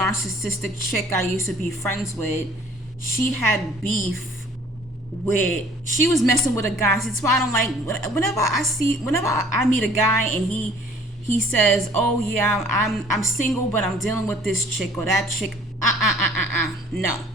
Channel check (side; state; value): both; normal; correlation 0.54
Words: chick I used to be friends with, she had beef with, she was messing with a guy. That's why I don't like, whenever I meet a guy and he says, oh yeah, I'm single, but I'm dealing with this chick or that chick. No.